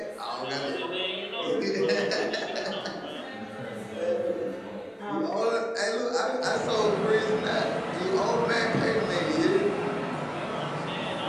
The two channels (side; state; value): both; identical; correlation 1.00